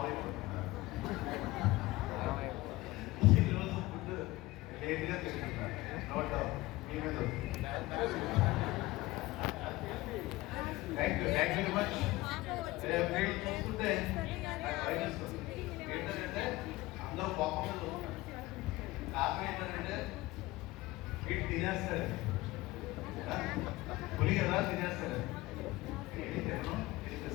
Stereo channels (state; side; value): quieter; right; 19.4 dB